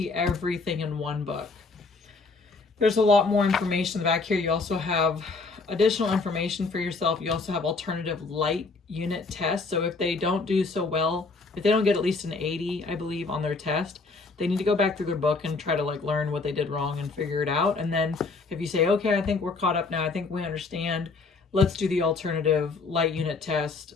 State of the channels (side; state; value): right; quieter; 4.0 dB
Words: everything in one book. There's a lot more information back here. You also have additional information for yourself. You also have alternative light unit tests. So if they don't do so well, if they don't get at least an 80, I believe, on their test, they need to go back through their book and try to like learn what they did wrong and figure it out. And then if you say, okay, I think we're caught up now, I think we understand, let's do the alternative light unit test